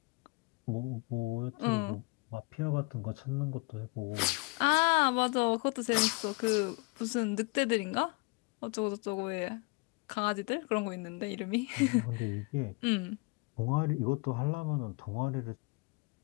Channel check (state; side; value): quieter; right; 28.4 dB